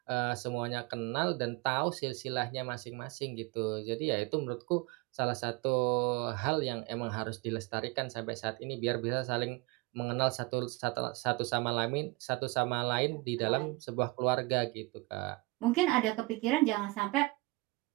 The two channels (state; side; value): quieter; left; 24.2 dB